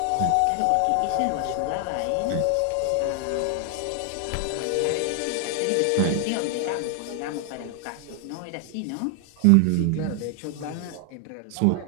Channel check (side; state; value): both; different; correlation 0.00